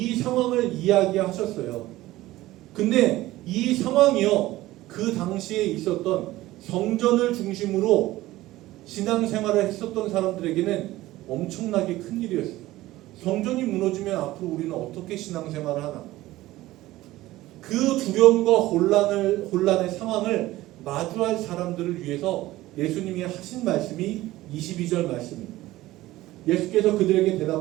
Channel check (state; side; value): quieter; left; 16.9 dB